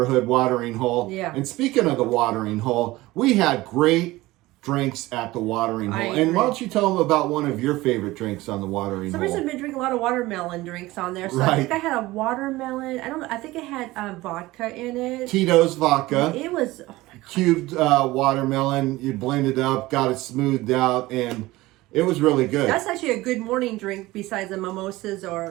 watering hole. Yeah. And speaking of the watering hole, we had great drinks at the watering hole. And why don't you tell them about one of your favorite drinks on the watering hole? Somebody's been drinking a lot of watermelon drinks on there. So I think I had a watermelon. I think it had vodka in it. Tito's vodka. It was, oh my God. Cubed watermelon. You blend it up, got it smoothed out, and it was really good. That's actually a good morning drink besides the mimosas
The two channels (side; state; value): left; quieter; 18.9 dB